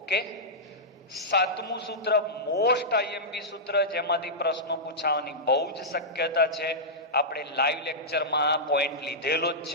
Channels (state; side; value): normal; both; correlation -0.12